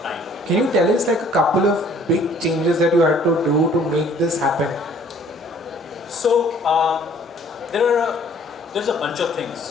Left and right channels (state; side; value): normal; both; correlation 0.57